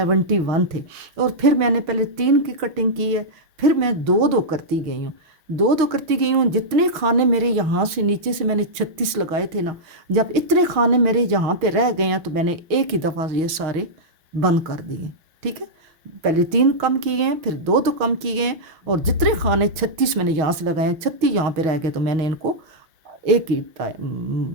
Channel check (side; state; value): left; late; 6.4 ms